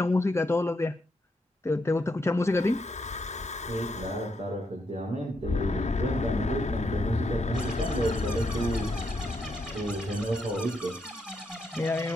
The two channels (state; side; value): normal; both; correlation 0.80